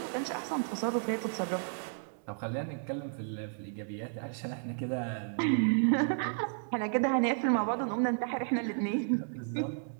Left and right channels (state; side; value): silent; left; 56 dB below the other